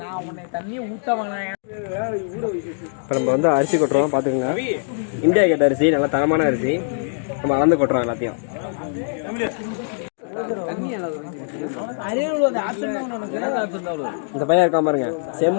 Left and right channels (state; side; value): silent; right; digital silence